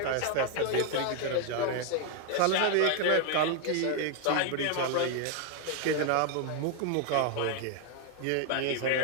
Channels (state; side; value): different; both; correlation 0.01